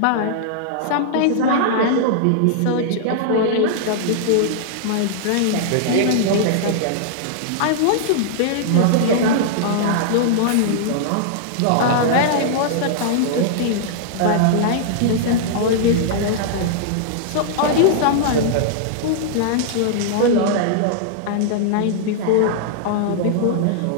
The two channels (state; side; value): different; both; correlation -0.01